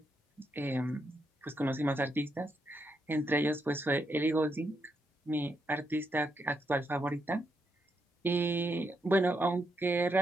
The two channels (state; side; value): normal; both; correlation 0.80